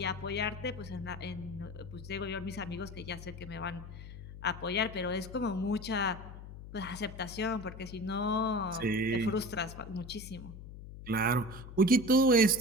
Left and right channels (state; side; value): noise; left; hum, 13 dB below the sound